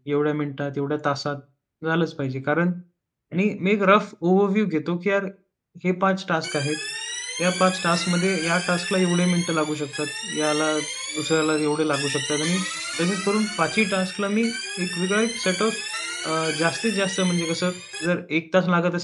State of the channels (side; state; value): both; identical; correlation 1.00